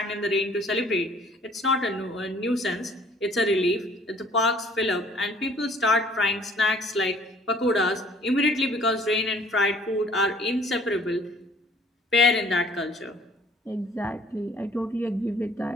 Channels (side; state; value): both; normal; correlation 0.56